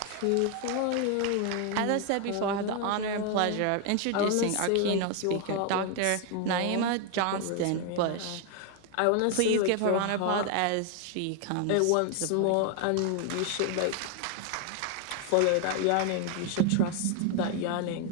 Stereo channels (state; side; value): different; both; correlation 0.01